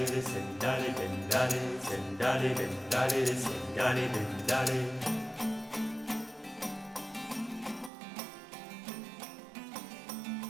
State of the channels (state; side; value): drops out; left; at 7.9 s